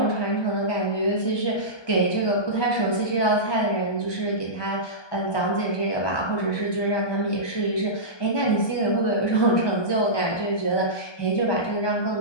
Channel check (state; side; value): late; right; 1.2 ms